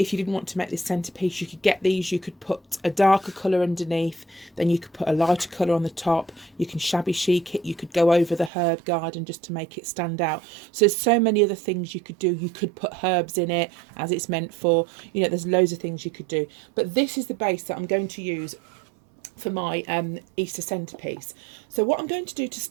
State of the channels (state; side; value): drops out; left; at 8.5 s